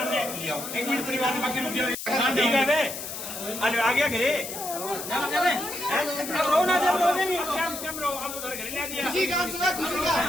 ने लिया एक मिनट परिवार ने बाकी रुक गया ठीक है बे आज आ गया घरे अब रो ना जब रोने नहीं क्या रो अब उधर घर ले दिया खुशी का आंसू है खुशी का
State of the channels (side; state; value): left; noise; hiss, 8 dB below the sound